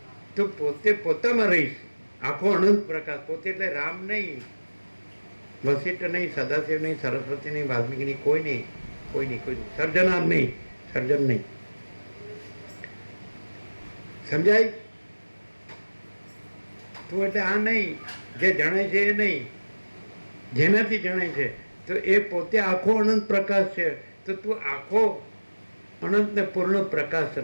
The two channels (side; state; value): both; inverted; correlation -1.00